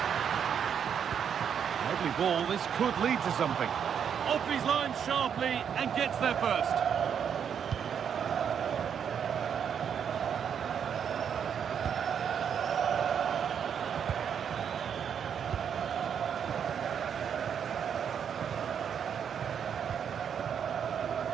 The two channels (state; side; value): quieter; left; 7.9 dB